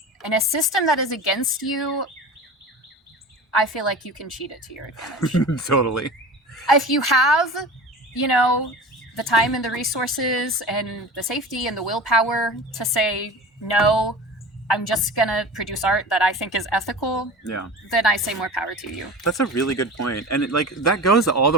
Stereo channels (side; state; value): both; normal; correlation 0.35